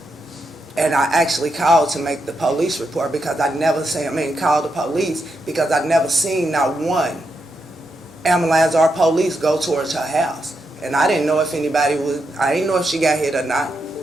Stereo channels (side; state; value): both; normal; correlation 0.84